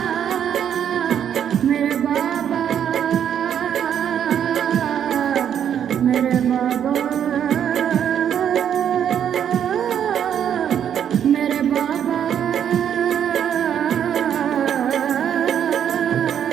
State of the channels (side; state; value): left; quieter; 9.1 dB